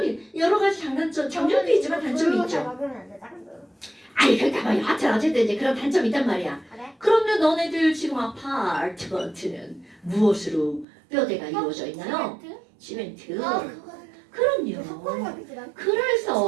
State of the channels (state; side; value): drops out; left; at 10.9 s